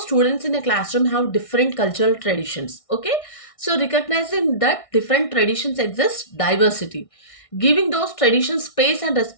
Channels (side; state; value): right; late; 1.6 ms